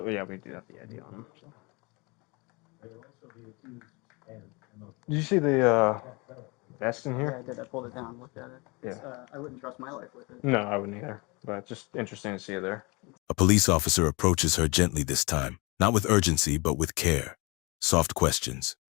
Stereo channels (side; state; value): right; quieter; 27.4 dB